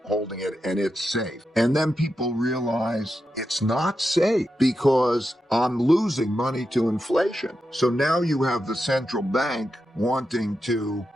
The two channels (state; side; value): normal; both; correlation 0.88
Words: holding it and it's safe. And then people realize it's not safe because I'm losing money to inflation. So now you have the central bank wanting to